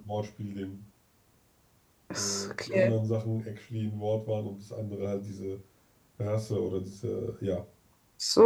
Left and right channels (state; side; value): identical; both; correlation 1.00